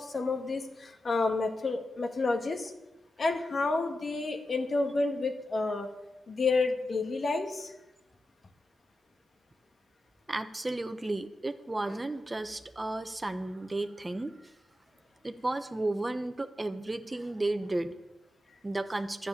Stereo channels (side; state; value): both; normal; correlation 0.90